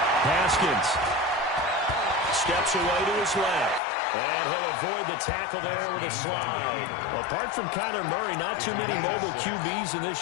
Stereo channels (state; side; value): drops out; right; at 3.8 s